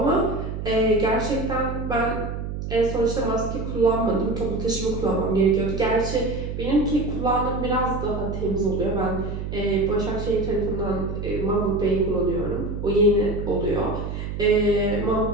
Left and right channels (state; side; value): noise; right; hum, 5 dB below the sound